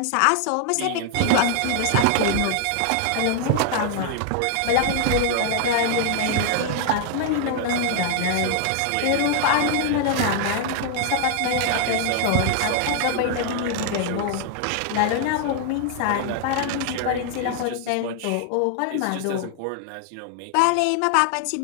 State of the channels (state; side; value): different; both; correlation 0.00